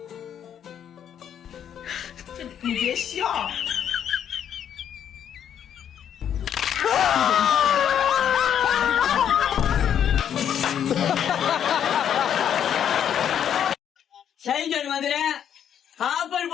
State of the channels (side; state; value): right; quieter; 9.2 dB